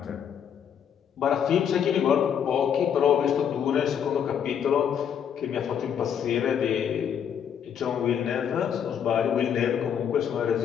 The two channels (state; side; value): quieter; right; 8.3 dB